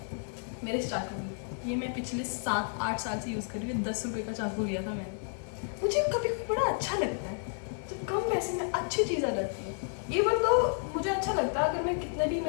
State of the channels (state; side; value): silent; right; 57 dB below the other